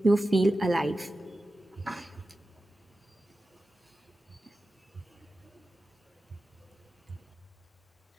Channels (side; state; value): both; normal; correlation 0.94